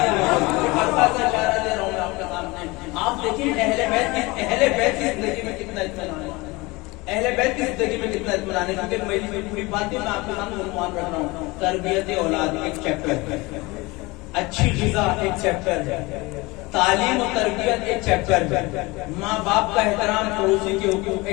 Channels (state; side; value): quieter; right; 23.5 dB